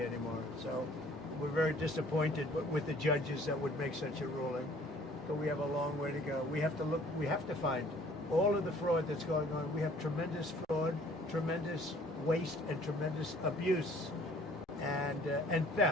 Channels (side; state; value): both; normal; correlation 0.55